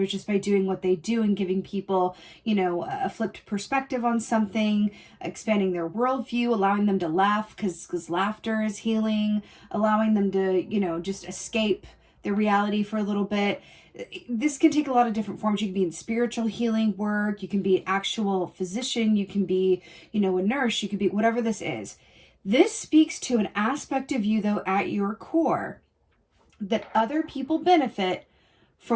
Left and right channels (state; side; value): identical; both; correlation 1.00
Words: just by doing what they do and giving people, you know, a flipped perspective on something, expanding their worldview, allowing them to laugh because laughter is healing, allowing them to, you know, just escape their reality for a little bit. This can take a lot of different forms. You can be in spiritual healing work. You can be an actual physician. You can be, you know, a nurse. You can be whatever this is. This speaks to an aspect of you, though, at your core, that other people benefit